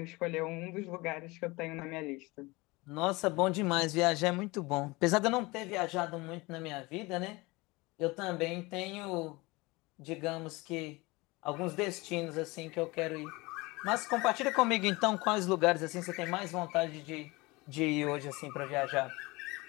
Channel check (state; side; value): quieter; right; 23.4 dB